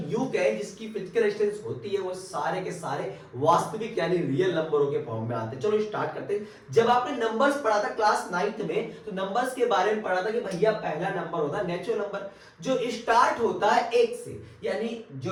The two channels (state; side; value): identical; both; correlation 1.00